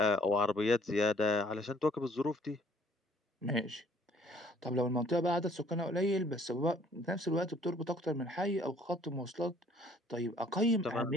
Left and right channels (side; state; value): both; normal; correlation 0.59